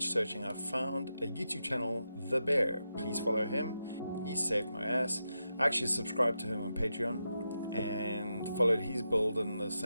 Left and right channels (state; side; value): inverted; both; correlation -0.87